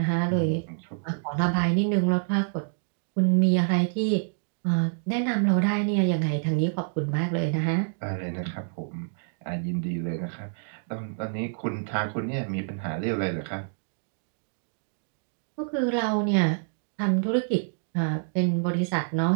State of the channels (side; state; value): left; silent; digital silence